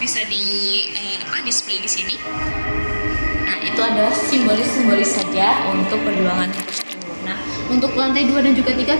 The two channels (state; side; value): inverted; both; correlation -1.00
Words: bisa display di sini. Nah, Nah, itu adalah simbolis saja untuk perjuangan tersebut. Nah, untuk lantai 2 dan juga 3